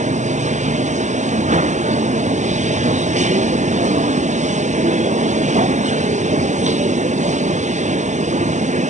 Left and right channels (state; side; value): late; left; 0.35 ms